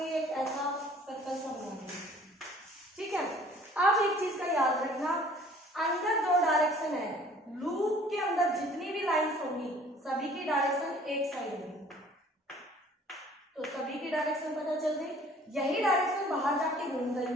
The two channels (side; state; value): both; normal; correlation 0.53